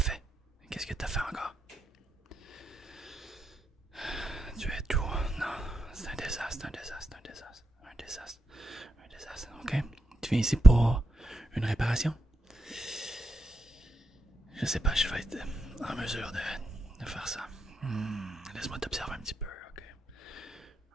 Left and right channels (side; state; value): both; normal; correlation 0.85